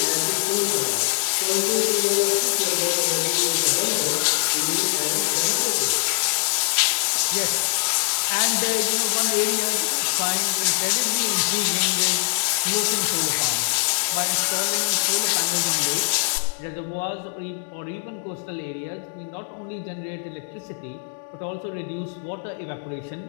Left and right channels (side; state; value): right; silent; digital silence